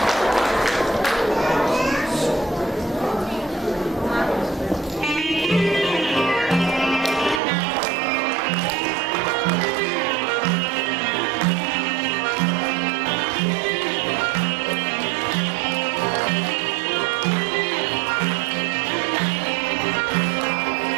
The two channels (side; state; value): left; drops out; at 7.4 s